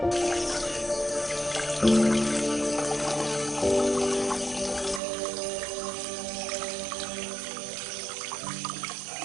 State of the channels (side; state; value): left; drops out; at 5.0 s